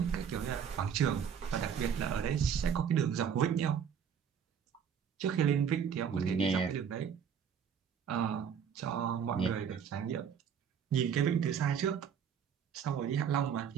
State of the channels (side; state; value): left; quieter; 7.7 dB